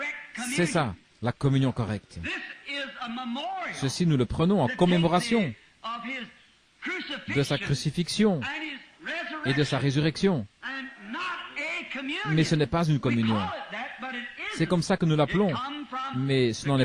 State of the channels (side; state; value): both; identical; correlation 1.00